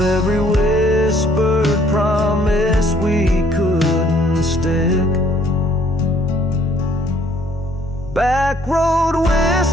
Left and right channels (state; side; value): normal; both; correlation 0.62